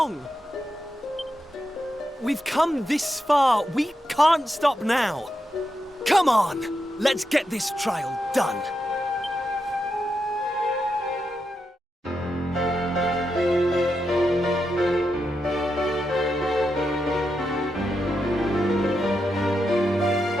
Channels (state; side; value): normal; both; correlation 0.85